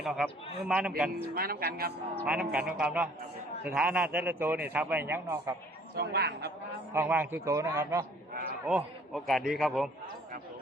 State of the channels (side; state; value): both; normal; correlation 0.56